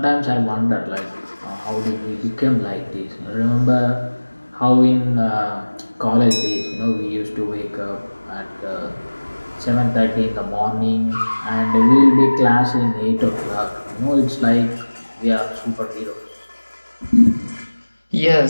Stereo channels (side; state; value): both; inverted; correlation -1.00